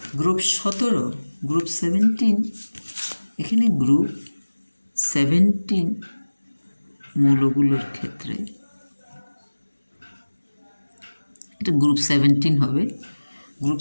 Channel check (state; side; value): inverted; both; correlation -1.00